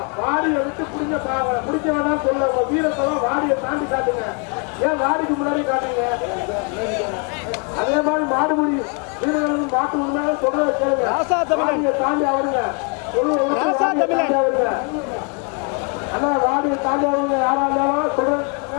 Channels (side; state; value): right; quieter; 36.2 dB